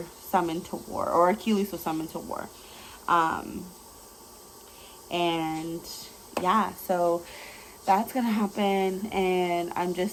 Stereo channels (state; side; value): identical; both; correlation 1.00